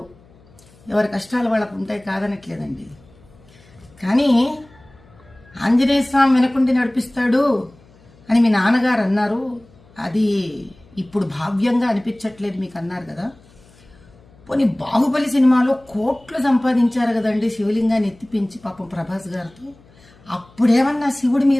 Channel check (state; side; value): noise; left; hum, 27 dB below the sound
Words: ఎవరి కష్టాలు వాళ్ళకు ఉంటాయి, కాదనట్లేదండి. కానీ ఆంజనేయ స్వామి వెనకుండి నడిపిస్తాడు అని మీ నాన్నగారు అన్నారు. అది ఇప్పుడు భావ్యంగా అనిపించట్లేదు మీకు అన్నారు కదా. పోనీ బాహుబలి సినిమాలో కోట్లు సంపాదించారు కదండి శివలింగాన్ని ఎత్తిపించి పాపం ప్రభాస్ గారితో. అప్పుడేమన్నా శివుడి